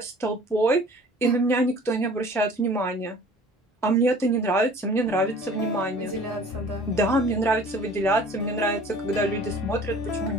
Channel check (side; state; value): both; normal; correlation 0.48